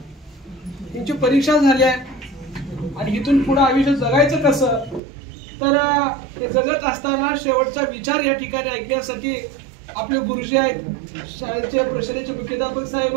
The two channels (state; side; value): drops out; left; at 5.0 s